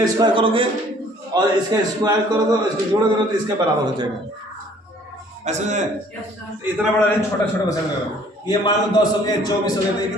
स्क्वायर करोगे और इसका स्क्वायर करोगे, इसको जोड़ोगे तो इसके बराबर हो जाएगा। ऐसे में इतना बड़ा नहीं, छोटा छोटा बचा लेगा। ये मान लो 10 हो गया, 24 हो गया तो ये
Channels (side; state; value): both; normal; correlation 0.57